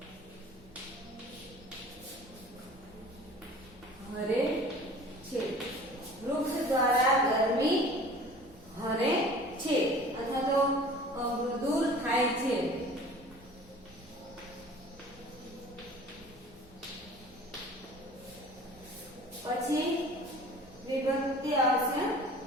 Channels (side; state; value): both; normal; correlation 0.45